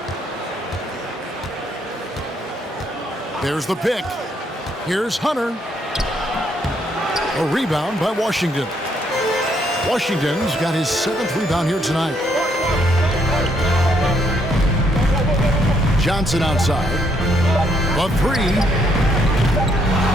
There's the pick. Here's Hunter. A rebound by Washington. Washington's got his 7th rebound here tonight. Johnson outside. A 3.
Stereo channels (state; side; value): normal; both; correlation 0.72